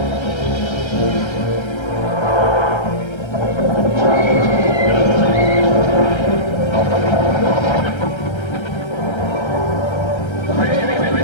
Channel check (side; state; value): right; late; 1.3 ms